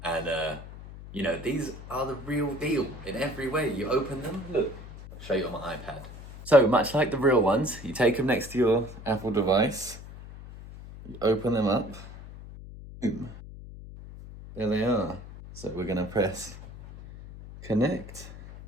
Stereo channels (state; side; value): noise; left; hum, 14 dB below the sound